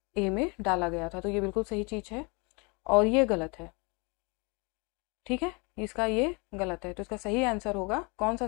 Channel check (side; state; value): right; quieter; 30.2 dB